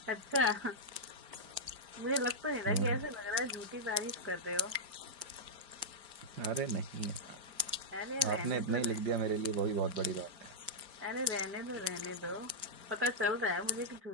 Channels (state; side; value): late; left; 5.0 ms